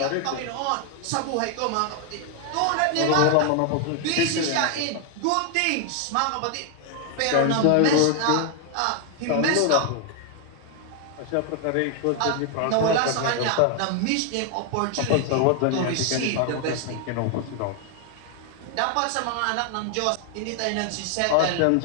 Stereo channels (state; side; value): different; both; correlation 0.00